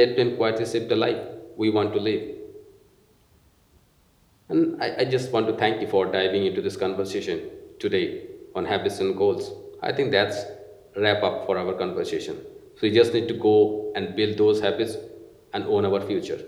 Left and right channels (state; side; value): identical; both; correlation 1.00